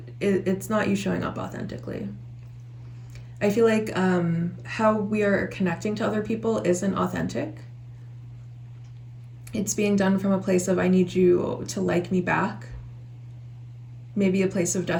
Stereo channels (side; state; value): both; identical; correlation 1.00